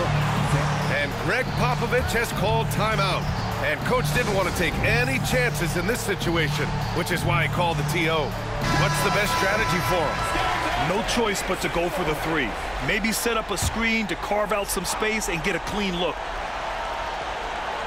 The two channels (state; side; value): identical; both; correlation 1.00